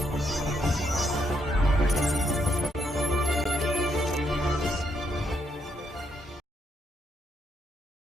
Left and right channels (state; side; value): normal; both; correlation 0.76